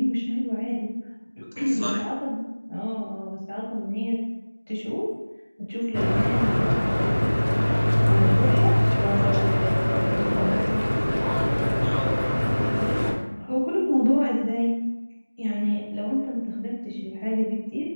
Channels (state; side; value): inverted; both; correlation -1.00